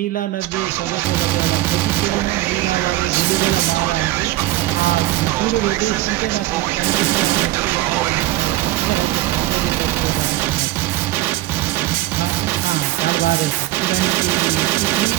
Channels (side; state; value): left; quieter; 16.4 dB